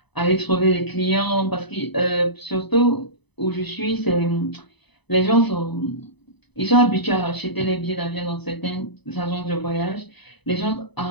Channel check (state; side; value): late; right; 0.99 ms